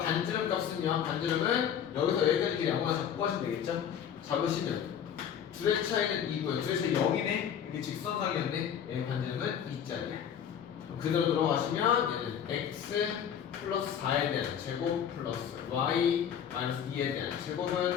값은요. 반지름은 여기서 여기까지 길이 아무나 잡고 하시면 되겠죠? 잡으시면 둘의 차이는 2고요. 둘의 차이 0이네. 이게 직선상이었네. 얘 반지름은 2짜리야. 그대로 들어가시면 얘는 x 플러스 4에 대한 제곱 플러스 y 마이너스 2에 대한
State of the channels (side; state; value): right; quieter; 8.7 dB